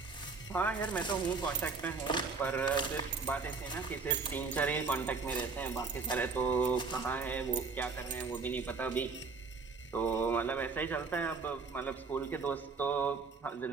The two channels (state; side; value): quieter; left; 4.6 dB